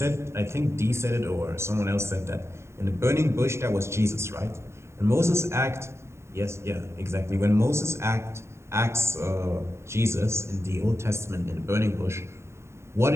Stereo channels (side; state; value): left; late; 0.13 ms